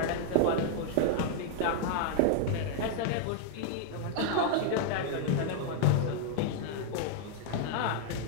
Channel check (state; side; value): different; both; correlation -0.01